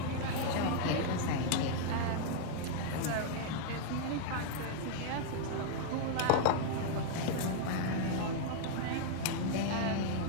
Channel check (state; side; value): different; both; correlation -0.01